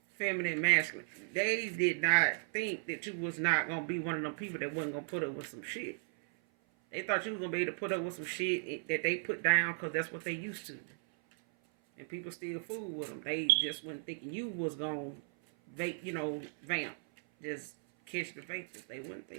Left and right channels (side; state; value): left; silent; 54 dB below the other